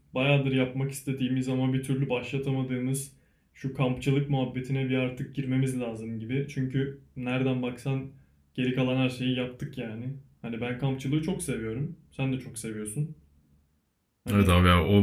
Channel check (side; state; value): both; identical; correlation 1.00